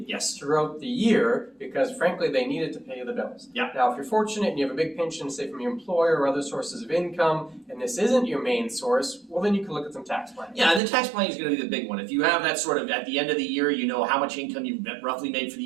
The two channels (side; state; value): left; drops out; at 10.8 s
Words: throughout the year because frankly they need it to pay the bills. Now if you're fortunate and you have a big pension, say from your employer or other sources of income, and this isn't your main source, well then you can look at some tax planning. Yeah, and the tax planning is going to be the big one. If you have that sort of, at the end of the year, you know how much income you've roughly made for the